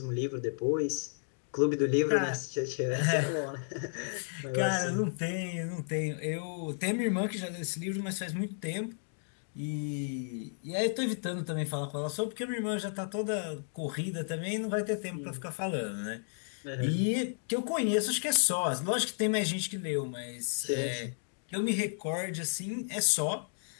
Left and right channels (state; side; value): silent; right; digital silence